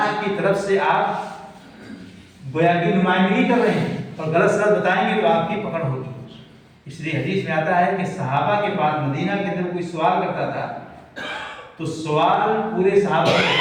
کی طرف سے آپ گویا کی نمائندگی کر رہے ہیں، اور غلط سلط بتائیں گے تو آپ کی پکڑ ہوگی. اس لیے حدیث میں آتا ہے کہ صحابہ کے پاس مدینہ کے اندر کوئی سوال کرتا تھا تو سوال پورے صحابہ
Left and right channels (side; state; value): both; identical; correlation 1.00